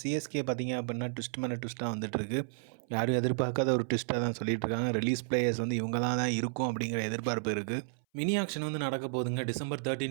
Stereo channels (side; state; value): left; silent; 56 dB below the other